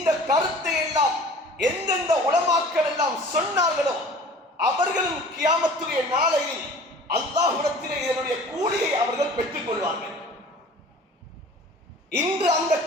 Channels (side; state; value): both; normal; correlation 0.45